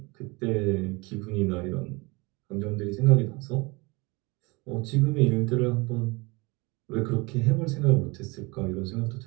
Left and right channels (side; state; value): left; quieter; 25.9 dB